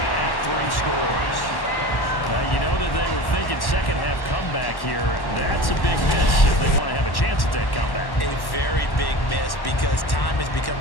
at 3 scores. You know that they were thinking 2nd half comeback here. That's a big miss if they want to have a chance at that comeback. A very big miss because time is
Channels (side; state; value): right; late; 1.1 ms